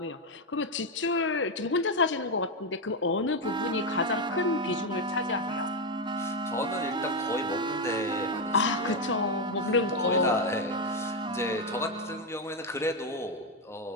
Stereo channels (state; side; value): normal; both; correlation 0.06